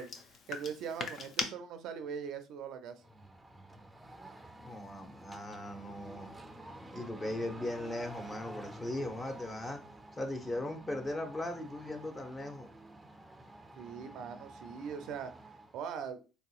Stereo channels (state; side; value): normal; both; correlation 0.74